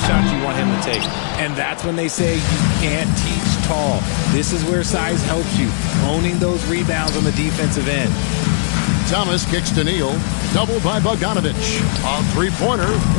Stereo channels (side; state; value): right; silent; digital silence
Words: you want him to take. And that's when they say you can't teach tall. This is where size helps you. Owning those rebounds on the defensive end. Thomas kicks to Neal. Doubled by Bogdanovich. On three-pointer,